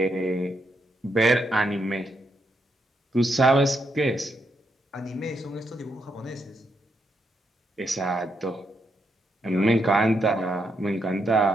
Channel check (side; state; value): both; normal; correlation 0.79